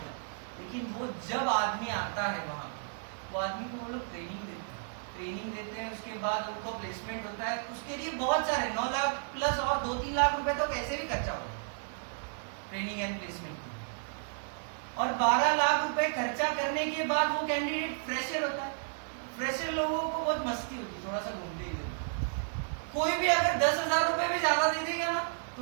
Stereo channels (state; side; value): silent; left; 56 dB below the other